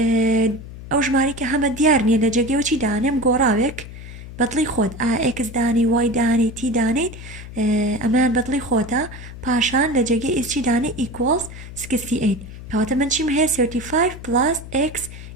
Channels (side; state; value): left; noise; hum, 13 dB below the sound